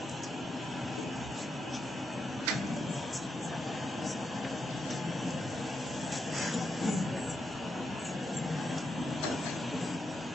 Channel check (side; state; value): both; normal; correlation 0.83